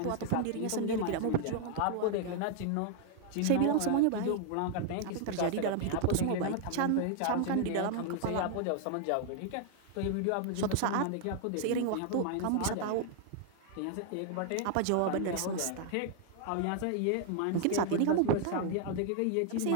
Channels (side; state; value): both; different; correlation 0.00